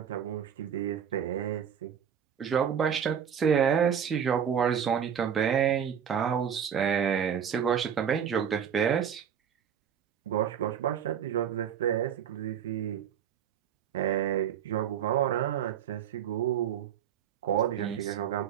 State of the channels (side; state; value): left; quieter; 8.3 dB